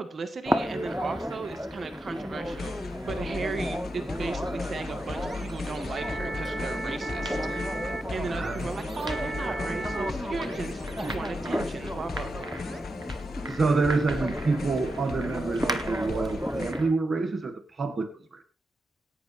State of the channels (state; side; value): normal; both; correlation 0.87